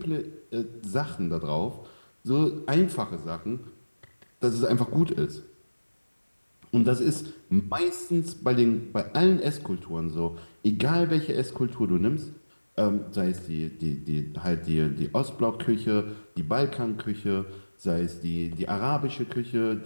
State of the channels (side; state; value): both; inverted; correlation -1.00